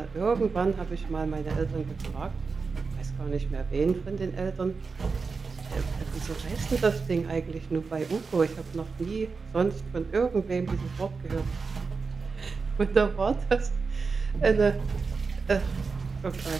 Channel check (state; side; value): quieter; left; 4.7 dB